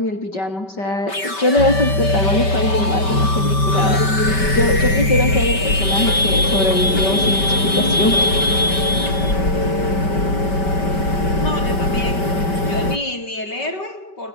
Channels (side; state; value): right; late; 5.2 ms